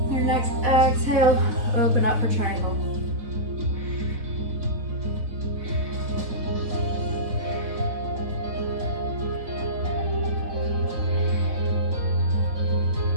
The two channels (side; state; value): left; late; 4.0 ms